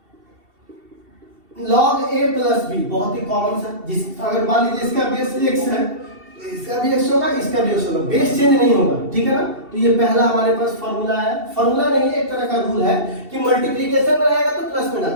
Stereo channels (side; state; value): left; late; 2.7 ms